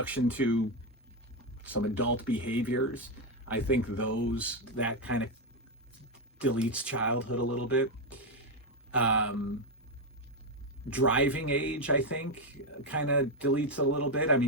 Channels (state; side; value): normal; both; correlation 0.06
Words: to some adult behaviors, I think that kind of deletes childhood a little bit. Driving age, I think, kind of deletes a little bit. I